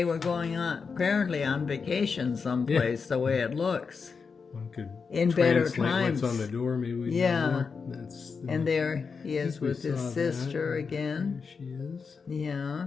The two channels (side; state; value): right; quieter; 5.3 dB